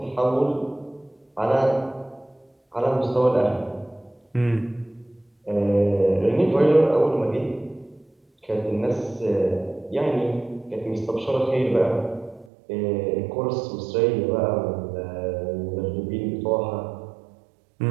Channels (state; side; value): drops out; left; at 12.5 s